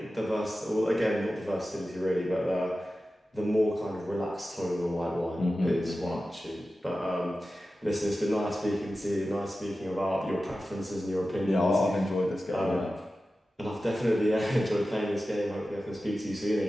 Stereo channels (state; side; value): normal; both; correlation 0.94